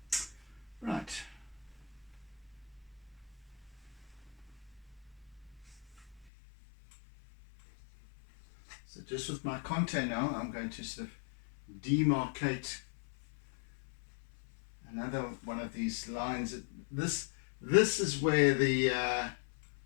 Right. So just with my contour now, I'm going to sort of demarcate another one of these lines. This is where the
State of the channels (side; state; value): right; drops out; at 6.2 s